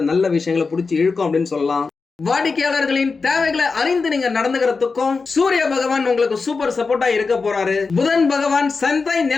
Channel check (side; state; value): right; quieter; 4.5 dB